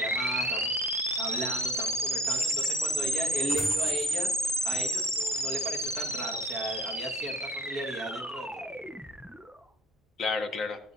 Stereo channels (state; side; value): normal; both; correlation 0.49